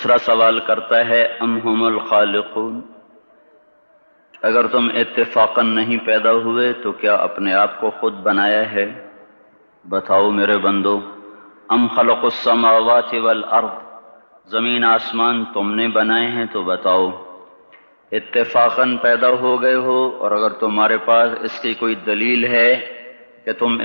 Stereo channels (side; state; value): both; inverted; correlation -1.00